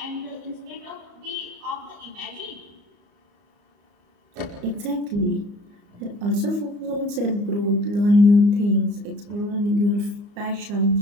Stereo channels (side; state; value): left; late; 34 ms